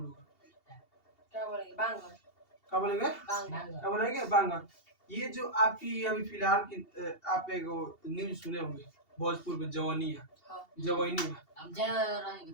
लोग, क्या बोलेंगे, बांगर। क्या बोलेंगे, क्या बोलेंगे, बांगर। ये जो आपकी अभी फिलहाल की आप एक न्यूज सुने होंगे भोजपुर में जवानिया,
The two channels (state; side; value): late; right; 2.7 ms